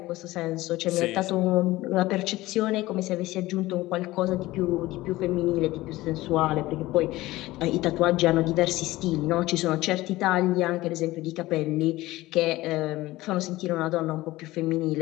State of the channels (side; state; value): right; quieter; 18.1 dB